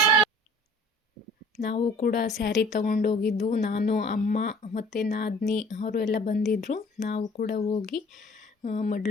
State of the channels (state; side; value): normal; both; correlation 0.50